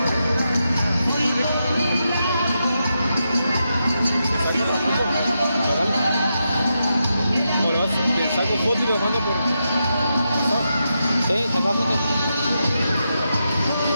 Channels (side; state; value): both; inverted; correlation -0.86